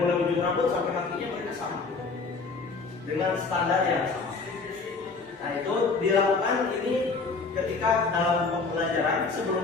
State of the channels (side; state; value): right; quieter; 4.3 dB